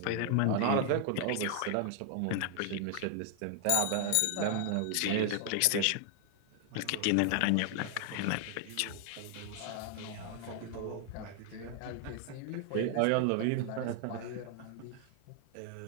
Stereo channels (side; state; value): both; different; correlation 0.00